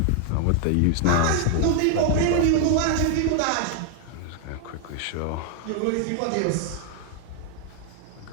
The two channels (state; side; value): different; both; correlation 0.00